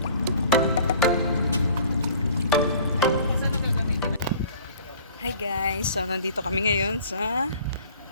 guys, so nandito kami ngayon sa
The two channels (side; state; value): both; inverted; correlation -0.50